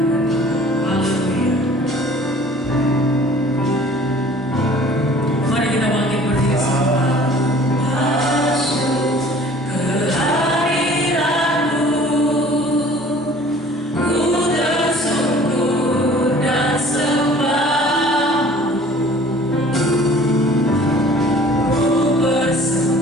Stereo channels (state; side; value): normal; both; correlation 0.50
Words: Haleluya. Mari kita bangkit berdiri semua. Masuk kehadiran-Mu, ku tersungkur dan sembah, ku